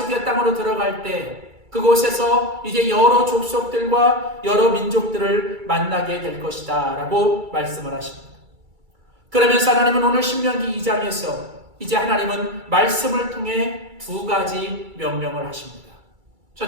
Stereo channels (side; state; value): left; late; 2.3 ms